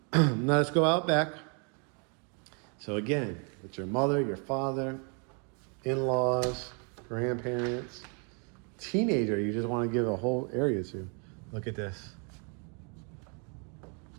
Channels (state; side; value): quieter; left; 37.4 dB